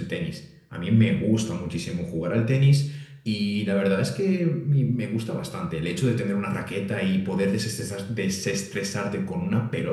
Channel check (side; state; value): both; identical; correlation 1.00